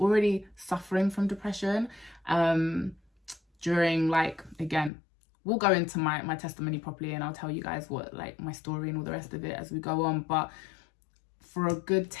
suffering from depression during, like, again, we'll go into my testimony properly, and I'll tell you guys what, like, my story and all the rest of it as we go on. But for a good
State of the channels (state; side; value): drops out; right; at 4.9 s